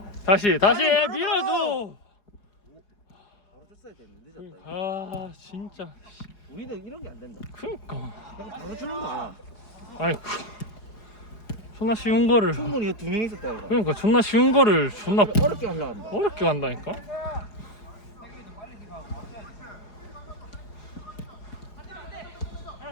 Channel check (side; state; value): right; late; 4.8 ms